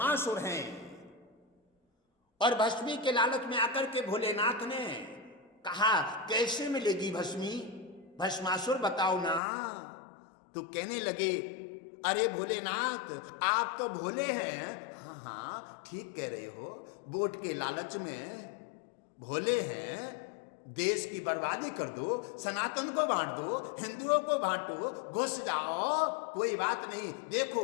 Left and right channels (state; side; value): drops out; right; at 9.4 s